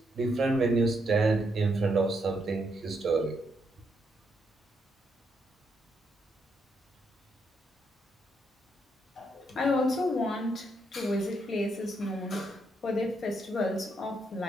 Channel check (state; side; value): normal; both; correlation 0.77